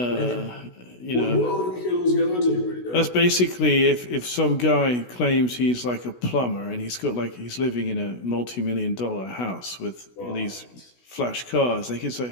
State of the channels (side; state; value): right; late; 16 ms